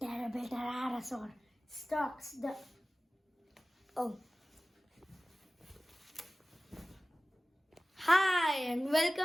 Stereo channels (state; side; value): normal; both; correlation 0.96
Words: terrible pterosaur stalks the... Oh. Hi and